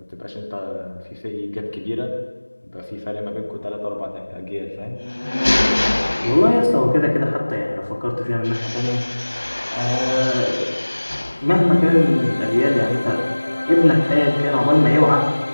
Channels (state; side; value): inverted; both; correlation -1.00